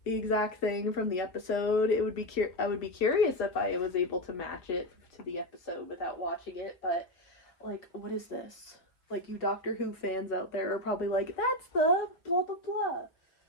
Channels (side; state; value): right; late; 5.6 ms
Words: the exact thing from the episode. It would be I would be curious if I was able to match it to the episode without watching it, but like, what is this? Like, you Doctor Who fans out there are probably like, that's the blah blah blah.